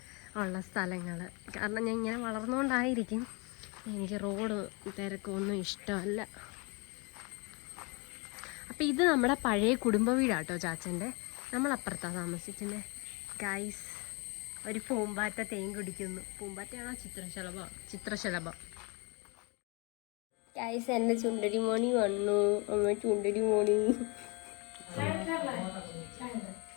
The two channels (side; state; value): right; quieter; 30.0 dB